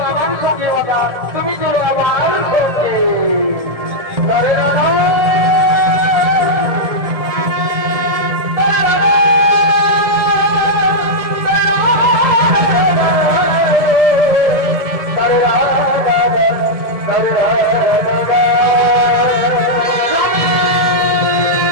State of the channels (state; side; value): late; left; 1.7 ms